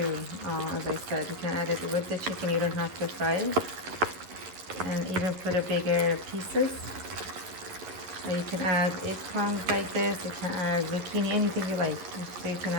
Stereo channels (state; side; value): late; left; 11 ms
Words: As I said, you can add it with the chicken. You don't have to fry it, and even put a bigger pieces. Or you can add eggplants like this. You can add zucchini, anything you like. So you can